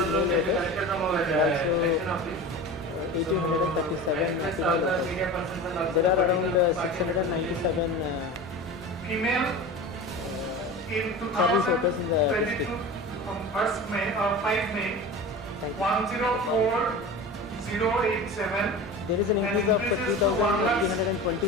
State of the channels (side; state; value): both; normal; correlation 0.32